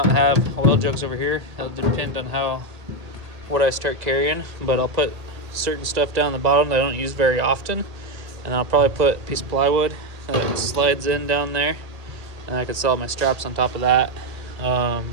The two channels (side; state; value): left; late; 1.8 ms